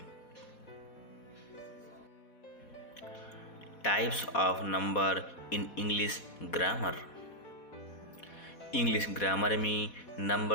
Types of number in English grammar. English grammar में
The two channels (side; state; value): right; late; 4.1 ms